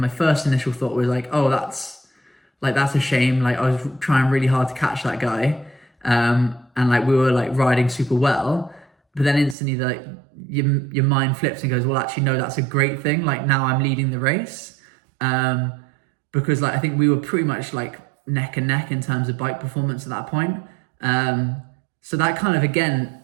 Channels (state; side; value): drops out; left; at 9.6 s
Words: first initial thought was like, oh, that's a shame. Like I was trying really hard to catch that guy. And like we were like riding super well, but then instantly like your mind flips and goes, well, actually, no, that's a great thing. Like now I'm leading the race. Because like, I think we were pretty much like neck and neck in terms of bike performance at that point. So that kind of, again,